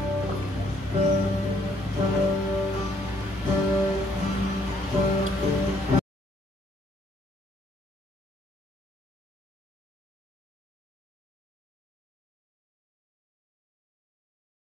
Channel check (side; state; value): both; normal; correlation 0.66